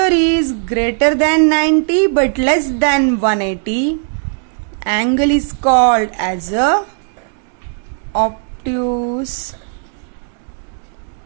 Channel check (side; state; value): left; silent; digital silence